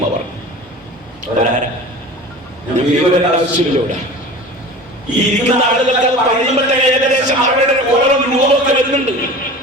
അവർ. ആവശ്യമില്ല. ഈ ഇരിക്കുന്ന ആളുകൾക്ക് പറയുമ്പോഴത്തെ ഏകദേശം അവരുടെ ഓരോ രൂപമൊക്കെ വരുന്നുണ്ട്.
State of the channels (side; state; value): both; normal; correlation 0.37